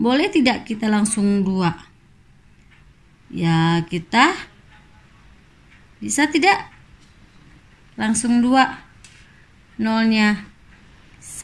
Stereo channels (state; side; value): identical; both; correlation 1.00